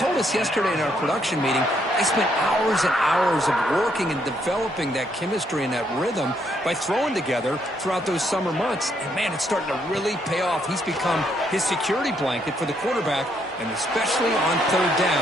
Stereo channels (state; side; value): normal; both; correlation 0.73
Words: us yesterday in our production meeting, they spent hours and hours of working and developing that chemistry and that rhythm by throwing together throughout those summer months. And, man, it's starting to really pay off. He's become his security blanket for the quarterback, and especially on 3rd